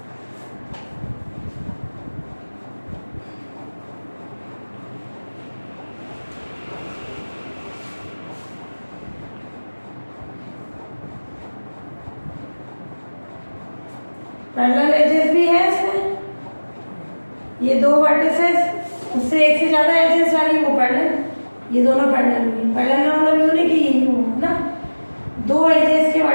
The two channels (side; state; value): both; inverted; correlation -1.00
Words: पैरेलल एजेस भी है इसमें। ये दो वर्टिसेस, उससे एक से ज्यादा एजेस वाली वो पैरेलल, ये दोनों पैरेलल हुई। पैरेलल का मतलब यूं नहीं कि यही हो ना, दो एजेस के